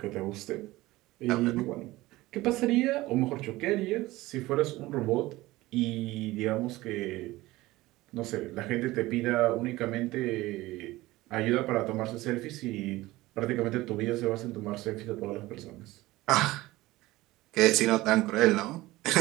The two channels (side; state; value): left; quieter; 18.6 dB